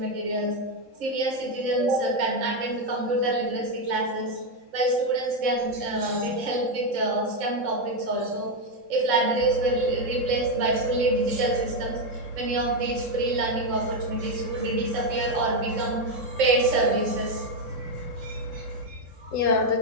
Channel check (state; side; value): late; left; 3.7 ms